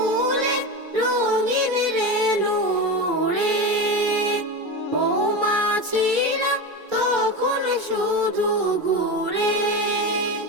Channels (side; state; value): left; late; 2.3 ms